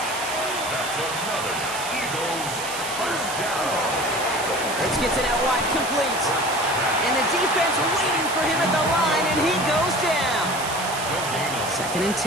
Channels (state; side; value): noise; right; hiss, 8 dB below the sound